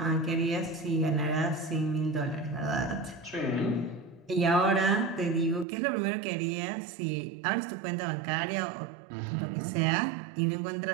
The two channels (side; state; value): left; drops out; at 5.7 s